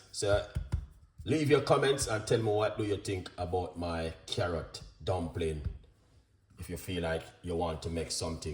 So leave your comments and tell me, what do you think about my carrot dumpling. If you feel like you want to make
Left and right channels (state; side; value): identical; both; correlation 1.00